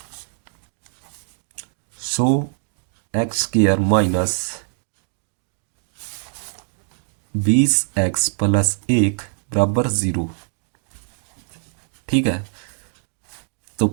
100x² - 20x + 1 बराबर 0। ठीक है, तो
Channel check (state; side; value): silent; left; 58 dB below the other